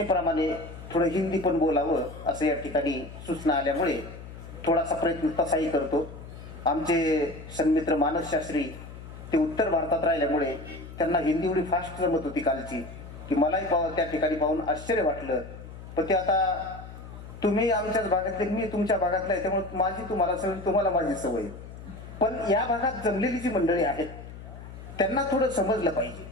थोडं हिंदी पण बोलावं असं या ठिकाणी सूचना आल्यामुळे थोडासा प्रयत्न तसाही करतो. आमचे सन्मित्र मानस शास्त्री ते उत्तर भारतात राहिल्यामुळे त्यांना हिंदी एवढी फास्ट जमत होती कालची की मलाही त्या ठिकाणी पाहून आश्चर्य वाटलं. पण ते आता तुम्ही आमच्याच भागातले, मी तुमच्या भागातला आहे, त्यामुळे माझी तुम्हाला सवय, तुम्हाला माझी सवय. पण या भागात जमलेली जी मंडळी आहेत त्यांना थोडं समजलं पाहिजे.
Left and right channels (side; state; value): left; noise; hum, 14 dB below the sound